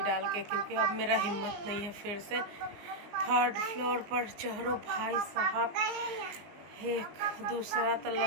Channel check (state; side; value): late; left; 19 ms